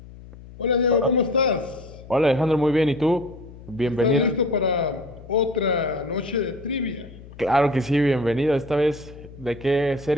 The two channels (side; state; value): left; noise; hum, 18 dB below the sound